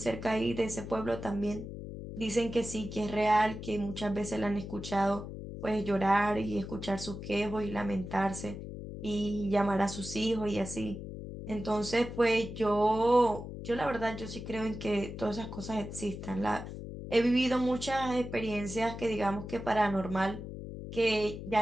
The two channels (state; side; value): noise; left; hum, 9 dB below the sound